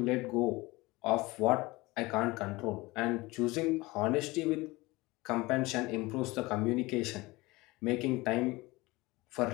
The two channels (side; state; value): right; quieter; 21.7 dB